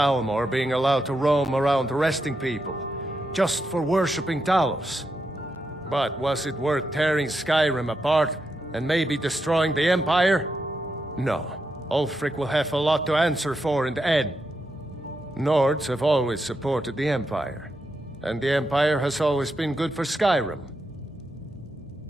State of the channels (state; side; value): noise; right; hum, 27 dB below the sound